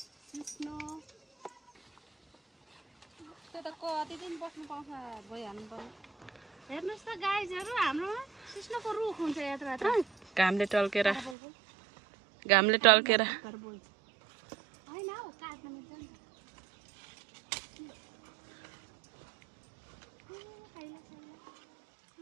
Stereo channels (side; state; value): left; drops out; at 11.4 s